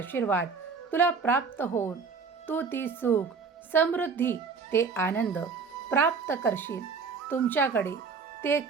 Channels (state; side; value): quieter; left; 5.2 dB